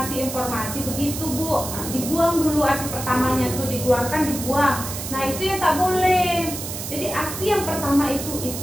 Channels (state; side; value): noise; right; hiss, 7 dB below the sound